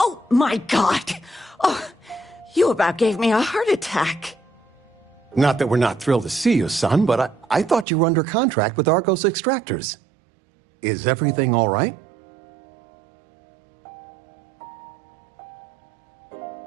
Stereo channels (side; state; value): left; drops out; at 7.9 s